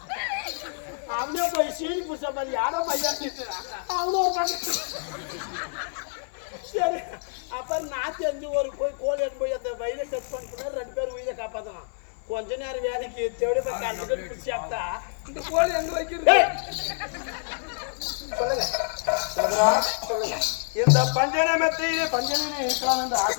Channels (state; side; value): silent; right; 60 dB below the other